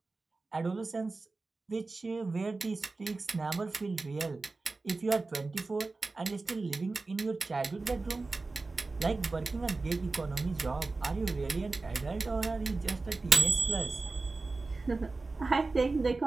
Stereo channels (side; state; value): left; quieter; 3.6 dB